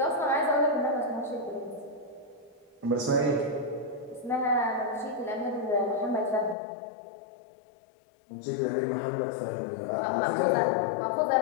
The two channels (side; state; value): right; drops out; at 6.6 s